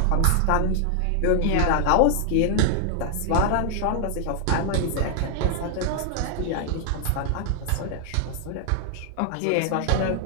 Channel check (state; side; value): different; both; correlation 0.00